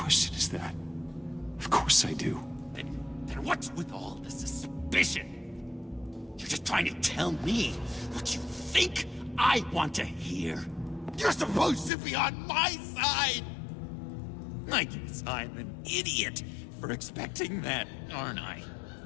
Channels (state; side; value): drops out; right; at 11.9 s